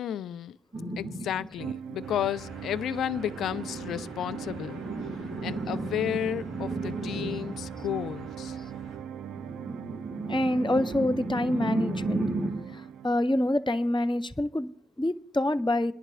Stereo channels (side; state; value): both; normal; correlation 0.80